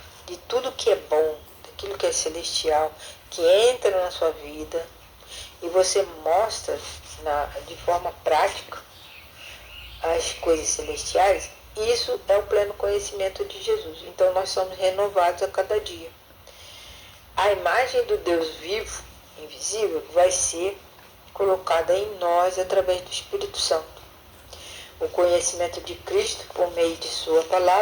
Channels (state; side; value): identical; both; correlation 1.00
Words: de tudo que é bom, daquilo que é celestial, que entra na sua vida, e você mostra de forma prática as coisas celestiais, isso é o pleno conhecimento de Jesus. Então nós somos renovados a cada dia. A imagem do Deus vivo, invisível, vai ser colocada em nós através do Espírito Santo. O conhecimento de Cristo, por meio de sua